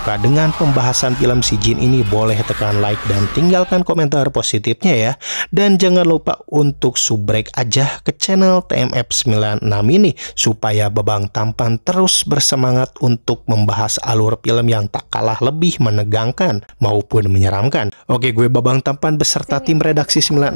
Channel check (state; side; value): inverted; both; correlation -1.00